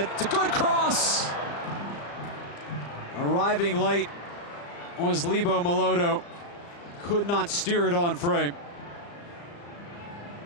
It's a good cross! Arriving late was Lebo Melodo. Could not steer it on frame.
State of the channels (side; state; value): right; late; 35 ms